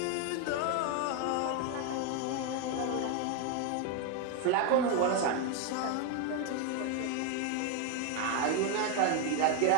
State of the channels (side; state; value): both; different; correlation 0.01